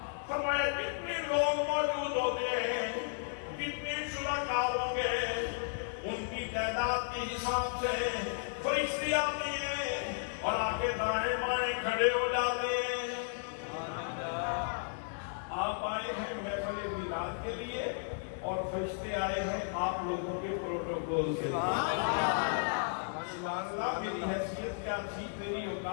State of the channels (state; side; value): silent; right; digital silence